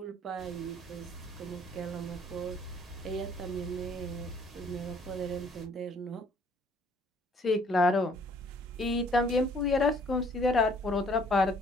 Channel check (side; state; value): both; normal; correlation 0.60